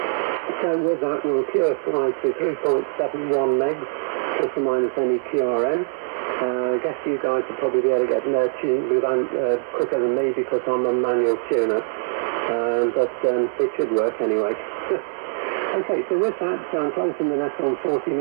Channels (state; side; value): silent; left; 64 dB below the other